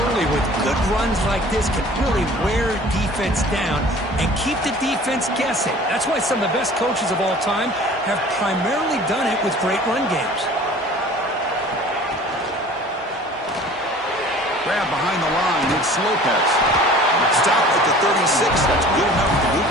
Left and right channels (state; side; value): normal; both; correlation 0.46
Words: early with good runs like this can really wear defense down and keep the defense guessing. That's why some of the best coaches of all time have primarily done it with great run games. Grab behind the line, it's Lopez. Stop at the 36. That's good enough to move